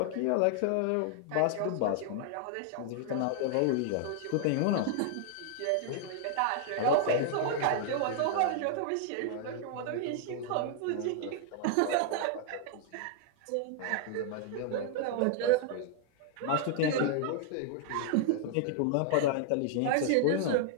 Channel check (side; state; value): both; different; correlation -0.01